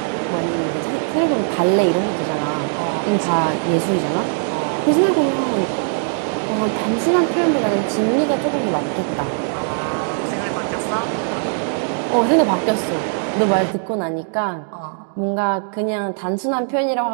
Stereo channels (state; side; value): silent; left; digital silence